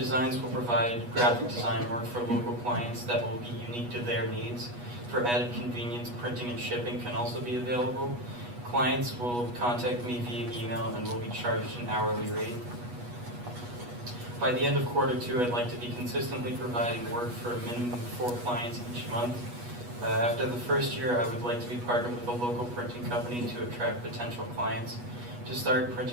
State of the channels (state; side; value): late; left; 8.3 ms